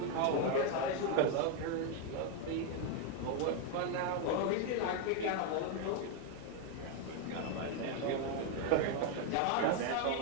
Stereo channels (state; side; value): different; both; correlation 0.01